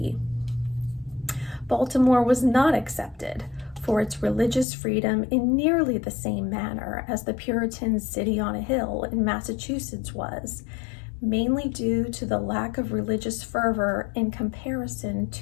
Baltimore was not accepted for its religious freedom in nearly the same manner as the Puritan city on a hill in Massachusetts was, mainly due to the lack of religious fervor in comparison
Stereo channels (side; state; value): right; drops out; at 4.7 s